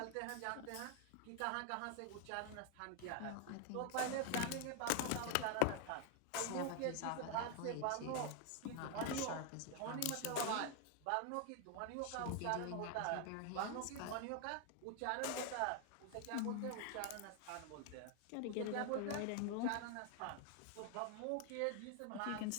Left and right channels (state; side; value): different; both; correlation 0.00